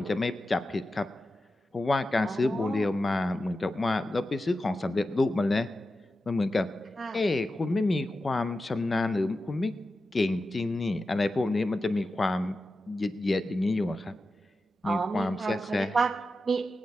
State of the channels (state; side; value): normal; both; correlation 0.92